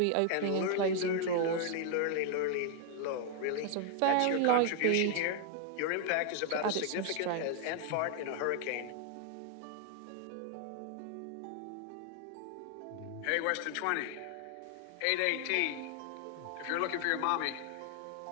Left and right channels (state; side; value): different; both; correlation 0.00